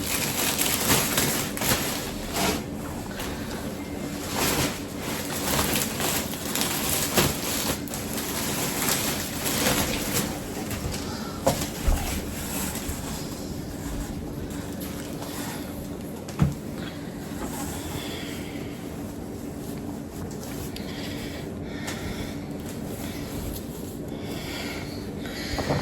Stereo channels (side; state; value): both; identical; correlation 1.00